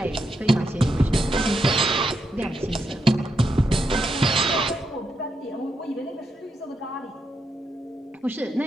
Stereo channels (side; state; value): both; normal; correlation 0.82